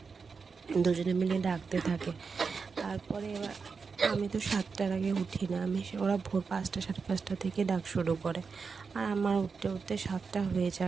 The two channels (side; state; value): left; quieter; 5.2 dB